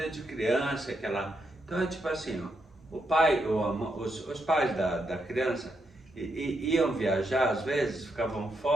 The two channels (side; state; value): both; normal; correlation 0.81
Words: de criança, Então é tipo assim, o pai, os pais da criança iam viajar, às vezes, ficavam